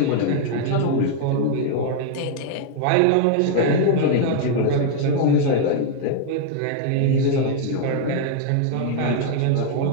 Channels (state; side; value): different; both; correlation 0.00